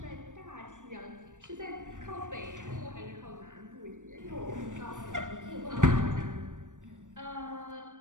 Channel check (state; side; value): late; left; 0.87 ms